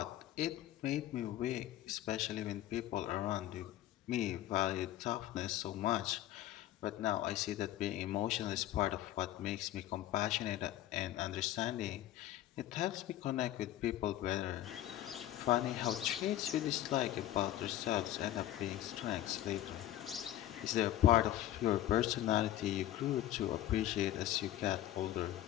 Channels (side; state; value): right; quieter; 13.5 dB